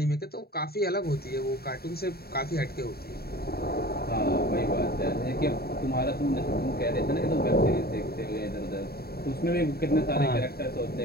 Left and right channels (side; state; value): right; late; 0.45 ms